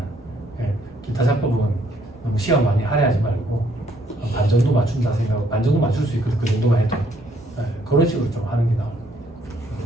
예, 기타 작법은 너무 시험 많이 할애하지 말고 반 정도 맞춘다 생각하고 반 정도 맞출 수 있거든. 그 정도만 해도 예, 그런 식으로 좀 하는 게 나아요.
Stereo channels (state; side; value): normal; both; correlation 0.67